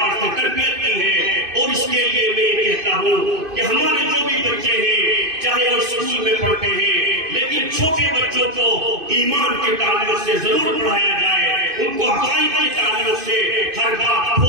سے تربیت کی ہے۔ اور اس کے لیے میں یہ کہتا ہوں کہ ہمارے جو بھی بچے ہیں چاہے وہ اسکول میں پڑھتے ہیں، لیکن چھوٹے بچوں کو ایمان کے تعلق سے ضرور پڑھایا جائے، ان کو عقائد کے تعلق سے ہر بات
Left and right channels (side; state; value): left; late; 2.5 ms